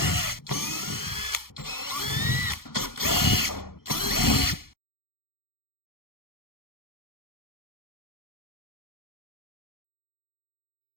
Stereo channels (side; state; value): right; late; 0.93 ms